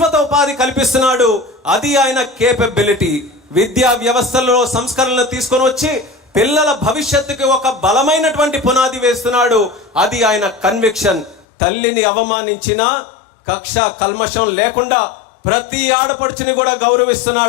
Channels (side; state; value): right; drops out; at 11.5 s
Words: ఉపాధి కల్పిస్తున్నాడు. అది ఆయన కేపబిలిటీ. విద్యా వ్యవస్థలో సంస్కరణలు తీసుకొని వచ్చి పిల్లల భవిష్యత్తుకి ఒక బలమైనటువంటి పునాది వేస్తున్నాడు. అది ఆయన కన్విక్షన్. తల్లిని అవమానించినా కక్ష కల్మషం లేకుండా ప్రతి ఆడపడుచుని కూడా